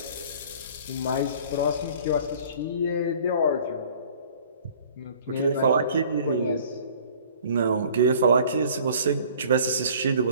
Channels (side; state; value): both; inverted; correlation -0.51